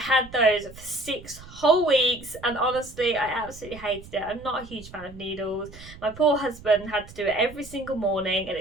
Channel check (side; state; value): right; noise; rumble, 18 dB below the sound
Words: those for 6 whole weeks, and honestly I absolutely hated it. I'm not a huge fan of needles. My poor husband had to do it every single morning at